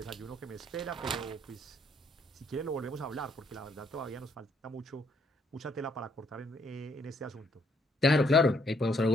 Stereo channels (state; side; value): normal; both; correlation 0.70